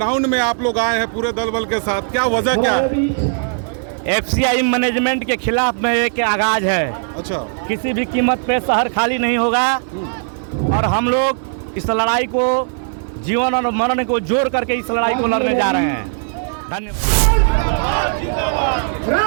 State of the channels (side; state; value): left; silent; 64 dB below the other